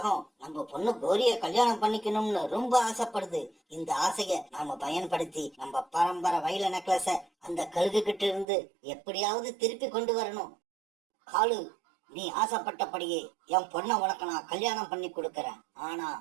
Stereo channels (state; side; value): drops out; left; at 8.5 s